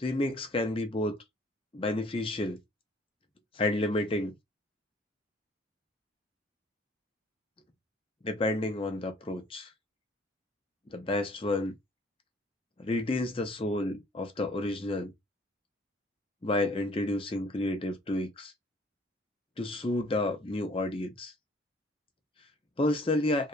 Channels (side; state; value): both; normal; correlation 0.56